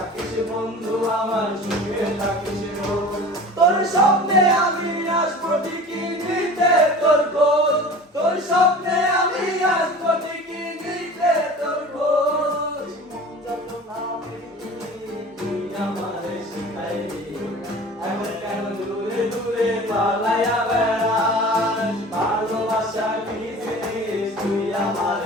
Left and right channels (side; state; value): both; normal; correlation 0.39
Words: বন্ধু আমার সুখে থাকিস রোজ তোর স্বপ্নে আমি আসবো ঠিকই নিতে তোর খোঁজ তোর স্বপ্নে আমি আসবো ঠিকই নিতে তোর খোঁজ মন যত না তুই আমারে শিখাইলি এখন কেন দূরে দূরে পালাইয়া বেড়াস ভালোবাসা কি জিনিস তুই